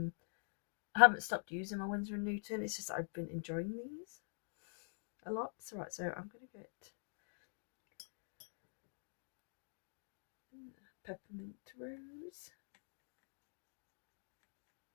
haven't stopped using my Winsor & Newton, it's just I've been enjoying these a lot. So right, so I'm going to get peppermint rose.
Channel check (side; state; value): right; silent; digital silence